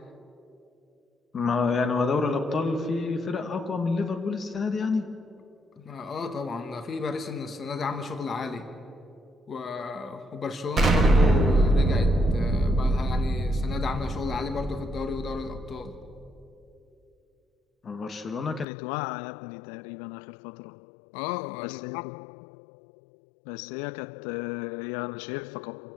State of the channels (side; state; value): right; drops out; at 18.7 s